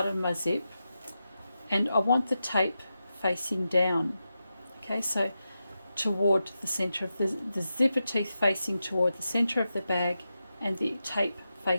of my zip, and I want the tape facing down. Okay, so toward the center of the zipper teeth facing toward the center of the bag, and the tape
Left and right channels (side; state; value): both; inverted; correlation -0.90